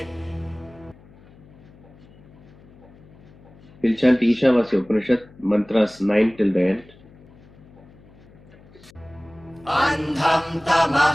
We'll chant Ishavasya Upanishad mantras 9 till the end. अन्धं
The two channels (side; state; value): left; noise; hum, 25 dB below the sound